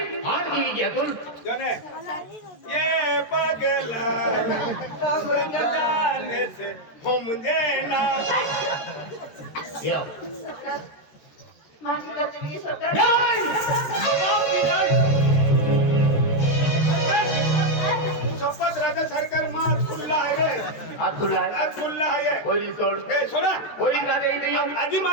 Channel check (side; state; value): right; late; 13 ms